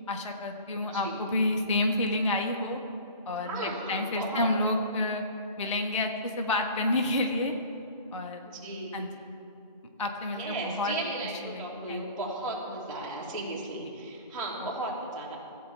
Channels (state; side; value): inverted; both; correlation -0.40